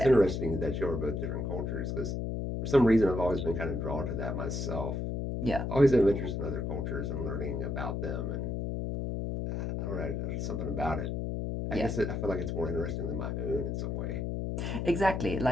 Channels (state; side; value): noise; left; hum, 2 dB below the sound